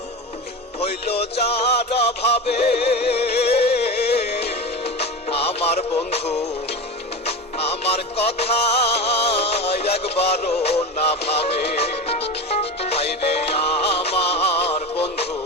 হইল যার ভাবে। আমার বন্ধু আমার কথা একবারও না ভাবে। হায়রে আমার বন্ধু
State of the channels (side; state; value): both; normal; correlation 0.26